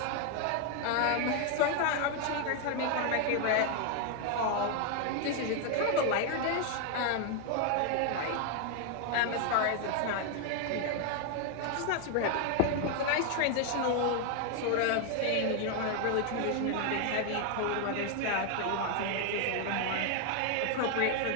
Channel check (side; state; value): both; different; correlation 0.01